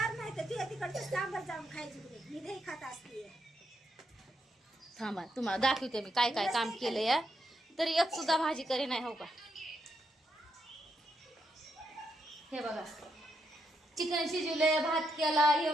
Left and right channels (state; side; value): normal; both; correlation 0.80